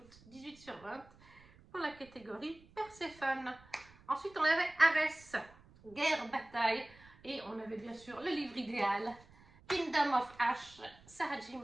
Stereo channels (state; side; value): noise; right; rumble, 24 dB below the sound